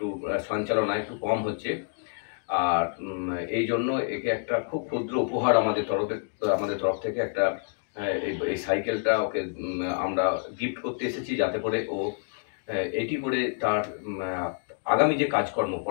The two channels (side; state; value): right; silent; digital silence